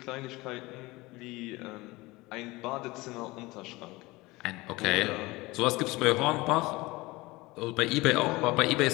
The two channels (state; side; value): quieter; right; 21.6 dB